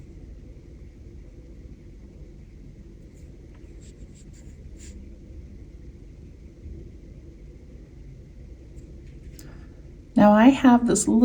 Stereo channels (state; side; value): identical; both; correlation 1.00